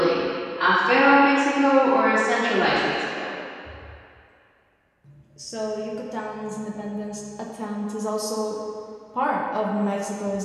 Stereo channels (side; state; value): both; identical; correlation 1.00